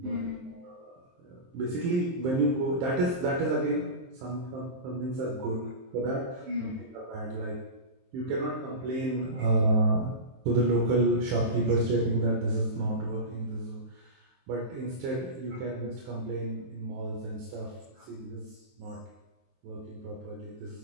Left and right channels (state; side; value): late; left; 23 ms